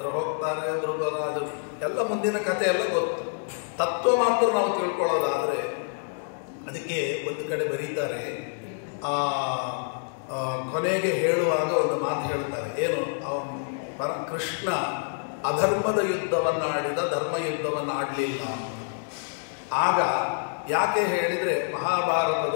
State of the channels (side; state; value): right; silent; digital silence